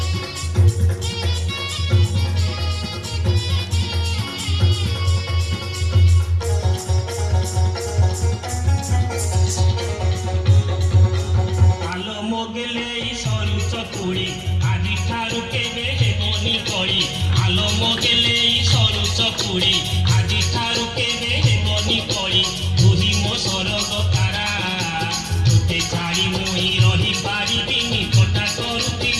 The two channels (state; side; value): identical; both; correlation 1.00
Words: ଆଲୋ ମୋଗେଲେ ସରୁ ଚକୁଳି ଆଜି ଠାରୁ କେବେ ହେବନି କଳି ଆଲୋ ମୋଗେଲେ ସରୁ ଚକୁଳି ଆଜି ଠାରୁ କେବେ ହେବନି କଳି ତୁହି ମୋ ସରଗ ତାରା ତୋତେ ଛାଡ଼ି ମୁଇଁ ରହିପାରିବିନି କଟା